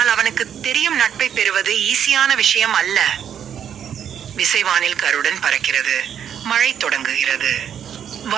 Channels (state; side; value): quieter; left; 8.8 dB